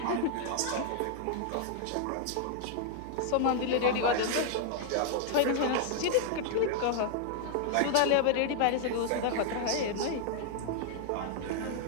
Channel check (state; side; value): different; both; correlation 0.00